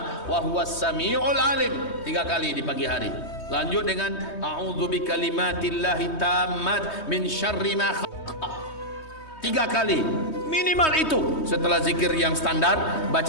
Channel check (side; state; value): right; late; 3.2 ms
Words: wa huwas sami'ul alim, 3 kali di pagi hari. Lanjut dengan a'udzu bikalimatillahi tammat min syarri ma khalaq, 3 kali minimal itu. Setelah zikir yang standar